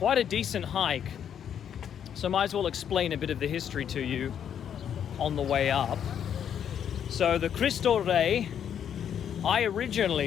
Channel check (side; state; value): right; quieter; 8.9 dB